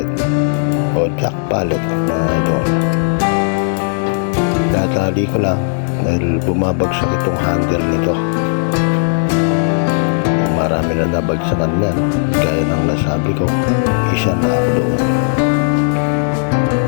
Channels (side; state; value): right; silent; digital silence